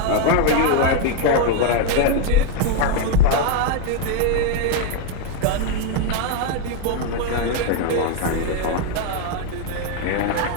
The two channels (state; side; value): different; both; correlation 0.01